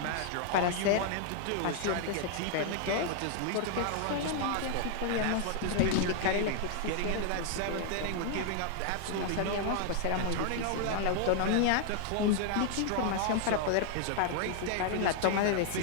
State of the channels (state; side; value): different; both; correlation 0.00